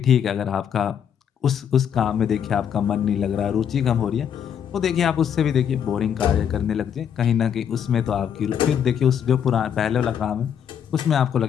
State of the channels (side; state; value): right; quieter; 8.5 dB